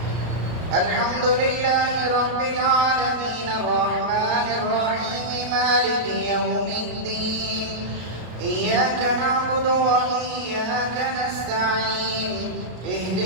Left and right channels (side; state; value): left; late; 33 ms